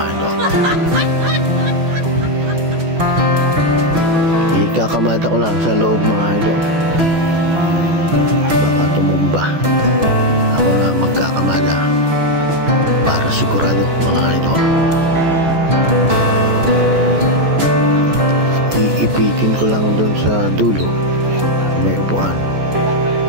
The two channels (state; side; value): late; left; 14 ms